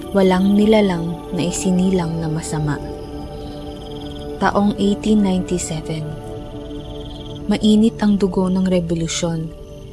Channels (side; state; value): both; identical; correlation 1.00